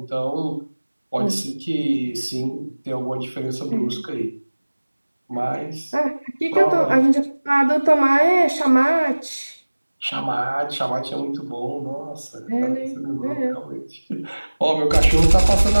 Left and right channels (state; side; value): inverted; both; correlation -1.00